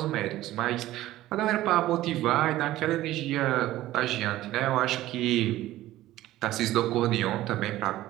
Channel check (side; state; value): left; quieter; 15.3 dB